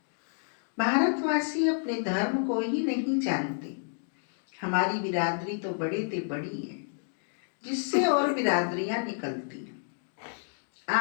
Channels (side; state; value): right; silent; digital silence